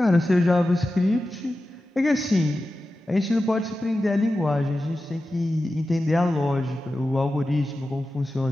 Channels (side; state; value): both; normal; correlation 0.93